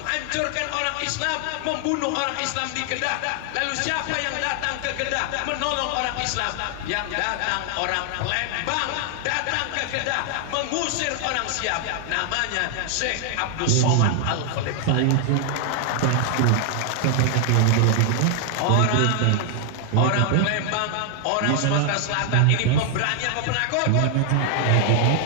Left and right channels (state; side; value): different; both; correlation 0.00